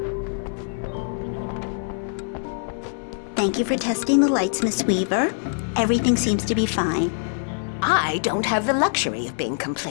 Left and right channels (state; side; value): silent; right; 59 dB below the other